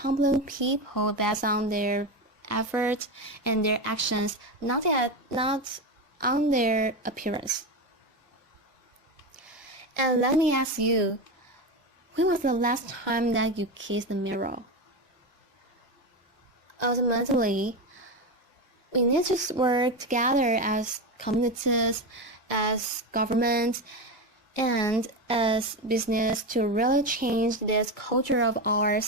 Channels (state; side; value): normal; both; correlation 0.17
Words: people based on their efforts and their actions, not on their appearance. And let me ask you, when was the last time that you kissed the mirror? Ultimately, we need to work together as communities, as governments, and as business to really change this culture of ours